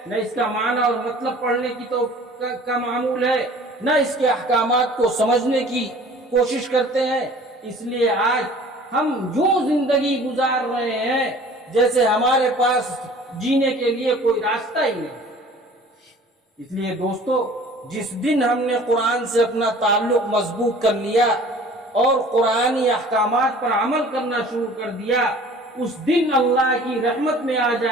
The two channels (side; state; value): both; normal; correlation 0.47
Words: نہ اس کا معنی اور مطلب پڑھنے کی کا معمول ہے، نہ اس کے احکامات کو سمجھنے کی کوشش کرتے ہیں۔ اس لیے آج ہم یوں زندگی گزار رہے ہیں جیسے ہمارے پاس جینے کے لیے کوئی راستہ ہی نہیں۔ اس لیے دوستو، جس دن ہم نے قرآن سے اپنا تعلق مضبوط کر لیا اور قرآنی احکامات پر عمل کرنا شروع کر دیا، اس دن اللہ کی رحمت میں آ